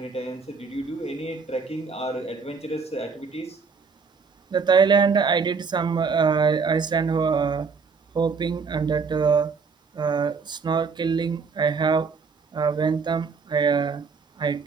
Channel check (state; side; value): quieter; left; 5.1 dB